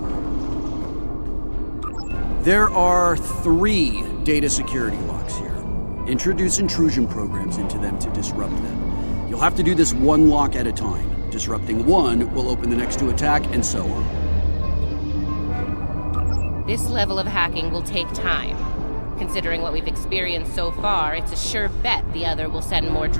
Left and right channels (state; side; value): inverted; both; correlation -1.00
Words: There are 3 data security locks here. Introduce intrusion programs into them to disrupt them. You'll have to do this one lock at a time. Disrupting one will open the next to attack, and so on. This level of hacking will take time. Considering what we've experienced so far, it's a sure bet the other will send more